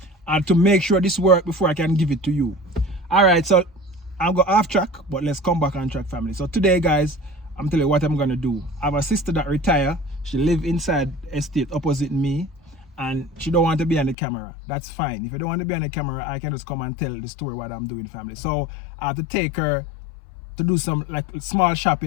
and to make sure this works before I can give it to you. All right, so I'm going off track, but let's come back on track, family. So today, guys, I'm telling you what I'm going to do. I have a sister that retired. She live inside estate opposite me, and she don't want to be on the camera. That's fine. If you don't want to be on the camera, I can just come and tell the story what I'm doing, family. So I have to take her to do some like small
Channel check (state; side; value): drops out; right; at 14.2 s